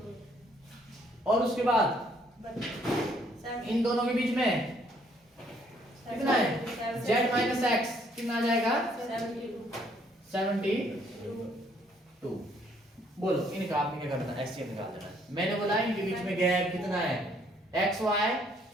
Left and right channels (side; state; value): both; normal; correlation 0.66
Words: और उसके बाद इन दोनों के बीच में कितना है? z माइनस एक्स कितना आ जाएगा? 72। बोलो इनका आपने क्या करना है? एचसीएफ निकाल देना है। मैंने बोला इनके बीच में गैप कितना है? एक्स वाई,